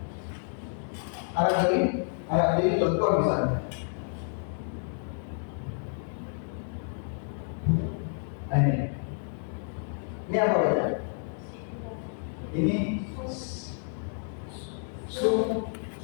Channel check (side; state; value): right; silent; 58 dB below the other